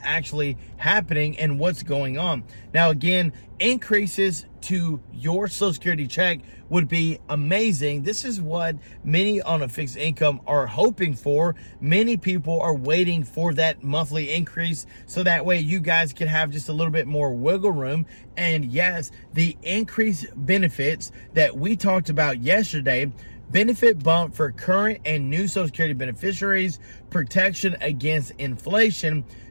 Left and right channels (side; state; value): both; inverted; correlation -1.00